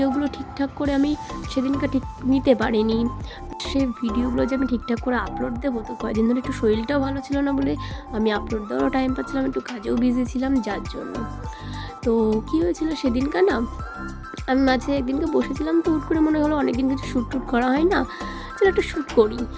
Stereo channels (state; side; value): identical; both; correlation 1.00